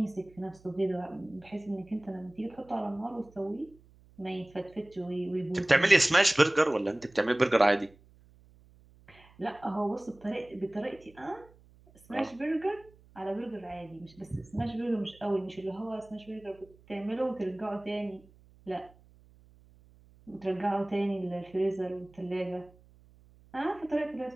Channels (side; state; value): right; noise; hum, 27 dB below the sound